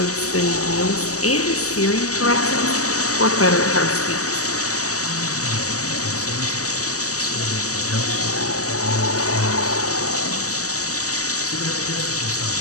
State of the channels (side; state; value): right; late; 0.66 ms